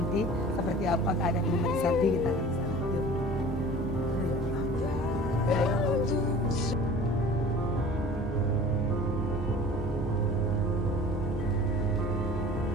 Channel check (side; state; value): both; normal; correlation 0.44